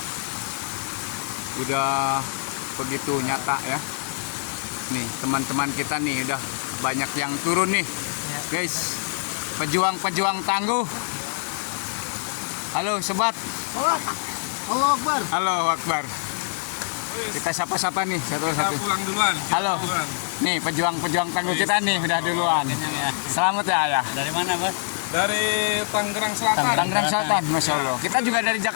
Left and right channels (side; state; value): right; silent; digital silence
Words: Udah begitu nyata ya. Nih teman-teman kita nih udah banyak yang turun nih guys, pejuang-pejuang tangguh. Halo sobat. Allahu Akbar. Halo Akbar. Kita sapa-sapa nih satu-satu. Pulang duluan. Halo. Nih pejuang-pejuang tangguh kita nih udah duluan. Selamat ya. Dari mana, Bos? Dari Tangerang Selatan. Tangerang Selatan, Masya Allah. Kita juga dari